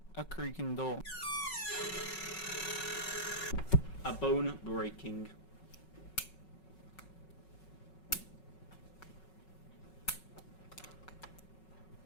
A creaking door. A bone breaking.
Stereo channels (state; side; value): late; right; 5.4 ms